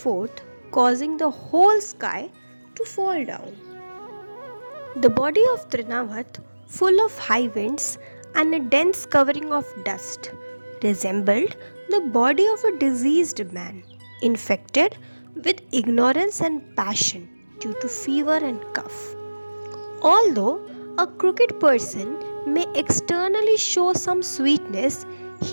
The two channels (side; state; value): both; inverted; correlation -1.00